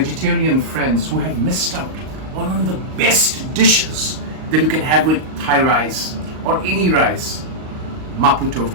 friends who have missed out one of the best dishes that you can have with Thai rice or any rice, Mapo Tofu.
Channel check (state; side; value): late; left; 38 ms